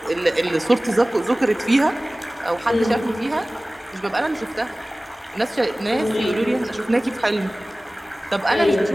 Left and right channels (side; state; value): both; normal; correlation 0.98